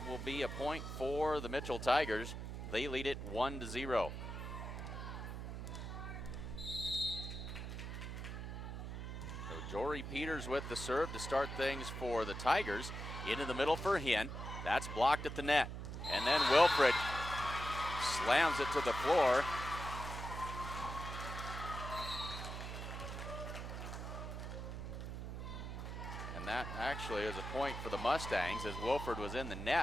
will be a point for the Mitchell Tigers. They lead it 1-0. So Jory Peters with the serve to start things for the Tigers. Into the middle for Hinn. That's blocked at the net. And then Wilfred slams it to the floor. And that actually is a point for the Mustangs as Wilfred was in the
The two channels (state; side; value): noise; right; hum, 6 dB below the sound